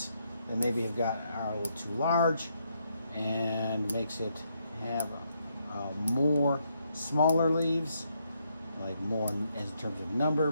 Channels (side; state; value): both; inverted; correlation -0.76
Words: that maybe are a little too large, and makes it have more smaller leaves, like more in terms of number,